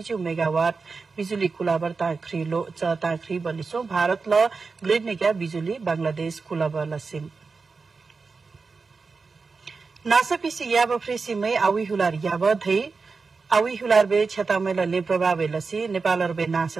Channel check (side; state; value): left; quieter; 4.5 dB